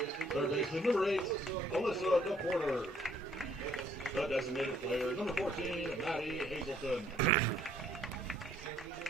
Third baseman, number 8, Alyssa DePorter. The designated player, number 14, Maddie Hazelton.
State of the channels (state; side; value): normal; both; correlation 0.64